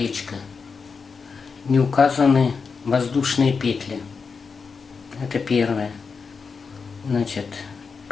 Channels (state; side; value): quieter; right; 5.2 dB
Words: не указаны воздушные петли. Это первое. Значит,